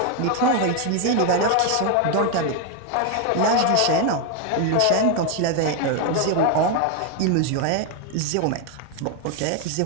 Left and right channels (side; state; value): both; different; correlation 0.01